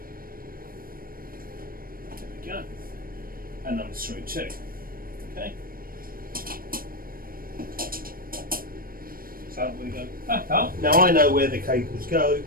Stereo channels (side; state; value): left; late; 0.42 ms